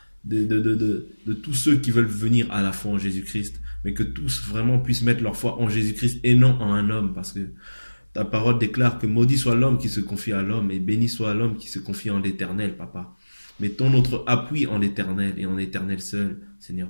de tous ceux qui veulent venir à la foi en Jésus-Christ, mais que tous vraiment puissent mettre leur foi en Jésus-Christ et non en un homme, parce que ta parole déclare que maudit soit l'homme qui se confie à l'homme et béni soit l'homme qui se confie en l'Éternel, Papa. Mettons notre appui en l'Éternel et en l'Éternel seul,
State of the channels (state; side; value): inverted; both; correlation -1.00